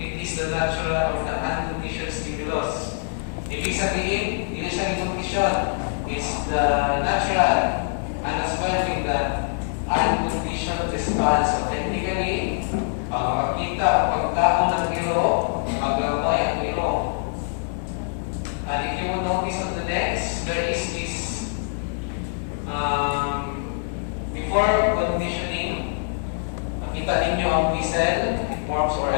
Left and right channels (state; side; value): silent; right; digital silence